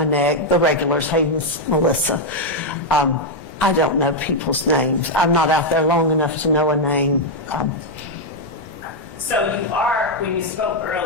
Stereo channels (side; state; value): both; normal; correlation 0.00